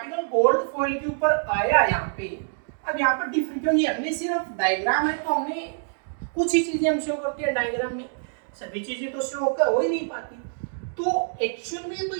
गोल्ड फॉइल के ऊपर आया यहाँ पे, अब यहाँ पर डिफरेंट, क्योंकि हमने सिर्फ डायग्राम है तो हमने कुछ ही चीजें हम शो करते हैं डायग्राम में, सभी चीजें तो शो हो ही नहीं पाती। तो एक्चुअल में तो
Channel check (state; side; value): silent; left; digital silence